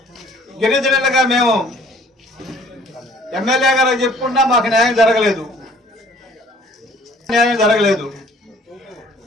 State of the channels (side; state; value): both; normal; correlation 0.56